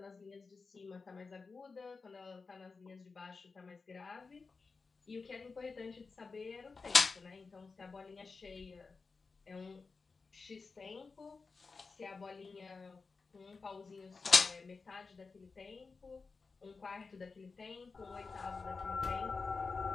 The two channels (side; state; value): right; quieter; 4.4 dB